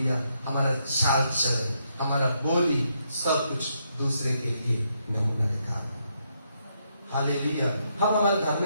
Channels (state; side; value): inverted; both; correlation -0.78